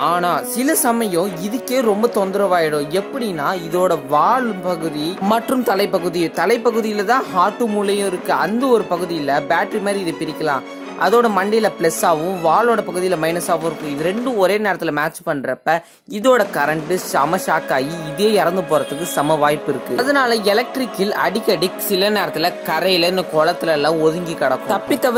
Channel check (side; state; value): both; identical; correlation 1.00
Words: ஆனா சில சமயம் இதுக்கே ரொம்ப தொந்தரவாயிடும். எப்படின்னா இதோட வால் பகுதி மற்றும் தலைப்பகுதியில தான் ஹார்ட் மூளையும் இருக்கு. அந்த ஒரு பகுதி பேட்டரி மாதிரி இது பிரிக்கலாம். அதோட மண்டையில பிளஸ் ஆகும், வாலோட பகுதியில மைனஸ் ஆகும் இருக்கும். இது ரெண்டும் ஒரே நேரத்துல மேட்ச் பண்றப்ப இதோட கரண்ட் செம ஷாக் ஆகி இதே இறந்து போறதுக்கு சம வாய்ப்பு இருக்கு. அதனால எலக்ட்ரிக்கில் அடிக்கடி சில நேரத்துல கரையில இந்த குளத்துல எல்லாம் ஒதுங்கி கிடக்கும். தப்பி